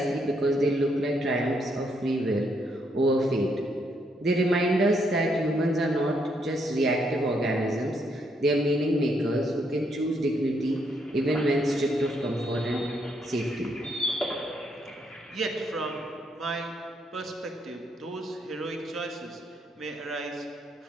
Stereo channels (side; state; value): both; normal; correlation 0.75